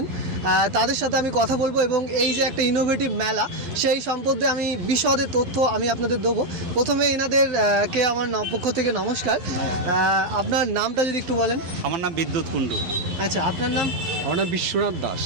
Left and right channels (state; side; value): late; left; 11 ms